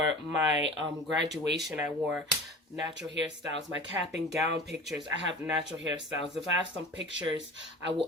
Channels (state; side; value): normal; both; correlation 0.38